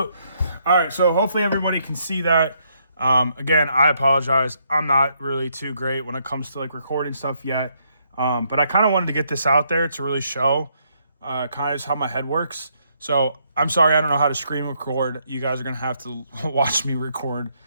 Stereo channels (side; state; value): both; inverted; correlation -0.73